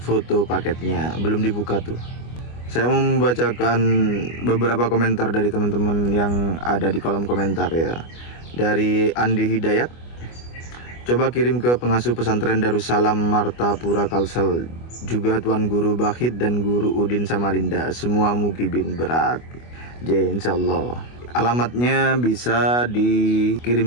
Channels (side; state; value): right; late; 25 ms